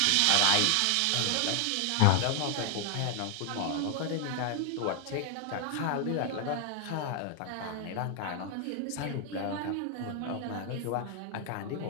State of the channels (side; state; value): both; different; correlation 0.00